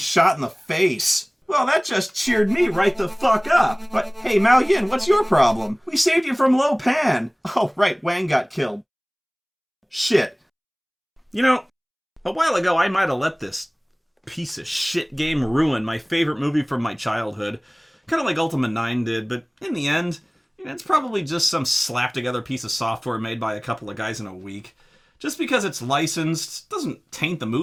in the face. Well, that just cheered me right the fuck up. But hey, Mao Yin, what's your problem? We saved you from Lo Pan. Oh, right, Wang got killed. Shit. You know, a while ago I might have let this piece of shit game ruin my favorite movie from my childhood. Kind of like Ultima 9 did, but in the end, it's probably just some slap-together piece of software made by a couple of guys in a week. Just because it's licensed doesn't taint the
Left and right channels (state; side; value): identical; both; correlation 1.00